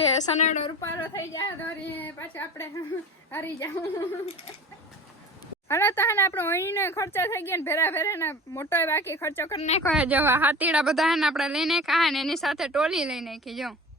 સનેડો રૂપારો થઈ જાય તો પાછું આપણે હારી જાવ. હાલો તો હે ને આપણો અહીંનો ખર્ચો થઈ ગયો ને ભેરા ભેરા ને મોટો બાકી ખર્ચો કરી નાખ્યો. જો હાથીડા બધા હે ને આપણે લઈને ખાય ને એની સાથે ટોલી લઈ નાખી. જો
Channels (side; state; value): both; normal; correlation 0.37